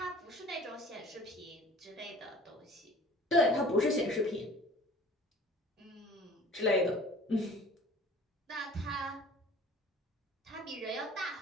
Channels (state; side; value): normal; both; correlation 0.46